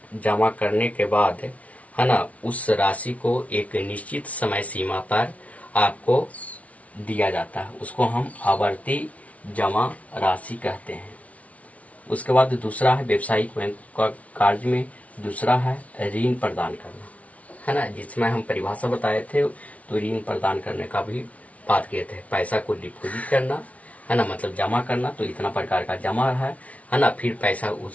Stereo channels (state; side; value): late; right; 0.067 ms